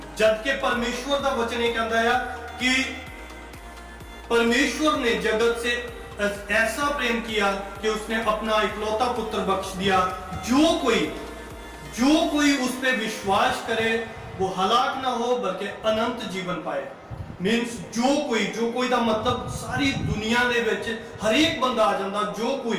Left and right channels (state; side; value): identical; both; correlation 1.00